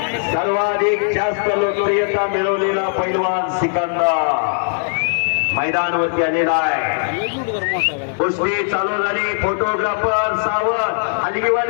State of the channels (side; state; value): right; silent; digital silence